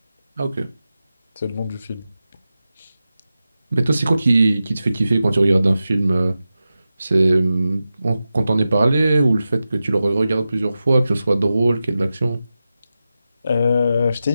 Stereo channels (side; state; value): both; inverted; correlation -0.92